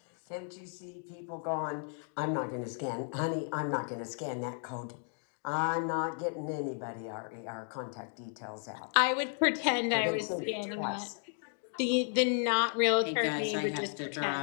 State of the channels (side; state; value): right; silent; 55 dB below the other